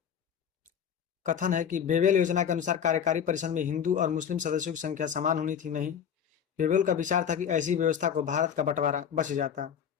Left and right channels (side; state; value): right; quieter; 8.2 dB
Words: कथन है कि बेवेल योजना के अनुसार कार्यकारी परिषद में हिंदू और मुस्लिम सदस्यों की संख्या समान होनी थी। नहीं, बेवेल का विचार था कि ऐसी व्यवस्था को भारत का बंटवारा बच जाता।